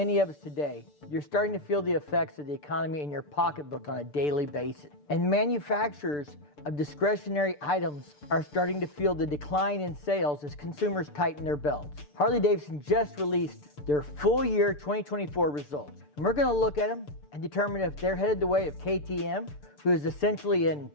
of us today, you're starting to feel the effects of the economy in your pocketbook on a daily basis. And manufacturers of discretionary items are starting to feel the decline in sales as consumers tighten their belts. Harley Davidson just released their full year 2024 results. And we're going to look at them and determine if they're headed the way of KTM, who is essentially in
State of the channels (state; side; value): late; right; 6.8 ms